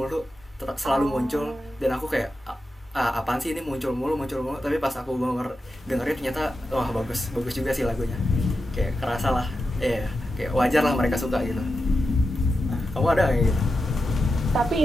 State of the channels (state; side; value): normal; both; correlation 0.90